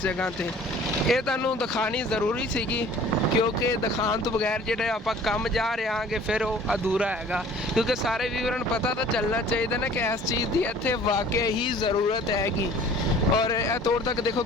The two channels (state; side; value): normal; both; correlation 0.49